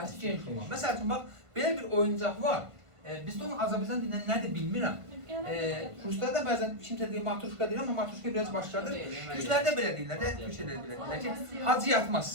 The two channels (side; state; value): left; late; 1.5 ms